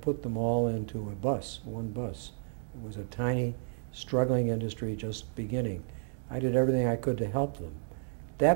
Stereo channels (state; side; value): silent; left; 57 dB below the other